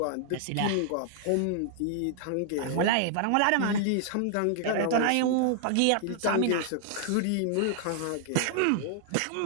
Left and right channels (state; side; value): different; both; correlation 0.00